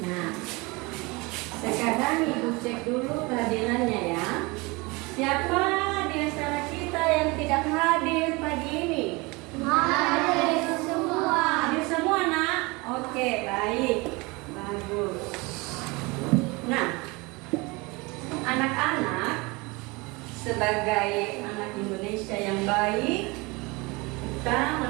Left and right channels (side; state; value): left; quieter; 25.5 dB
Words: sekarang Ibu cek dulu kehadirannya ya. Siapa di antara kita yang tidak hadir pagi ini? Hadir semua. Hadir semua, Nak? Oke, baik. Bagus. Nah, anak-anak sebagai anak Indonesia yang baik, kita